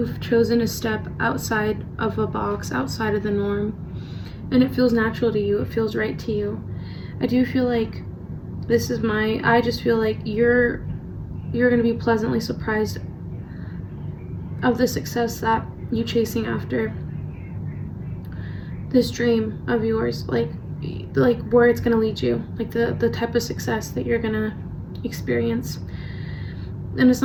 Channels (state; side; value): identical; both; correlation 1.00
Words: chosen to step outside of a box, outside of the norm, and it feels natural to you, it feels right to you. I do feel like I just feel like you're gonna be pleasantly surprised of the success that you chasing after this dream of yours, like where it's gonna lead you, like the type of success that you're gonna experience. And it's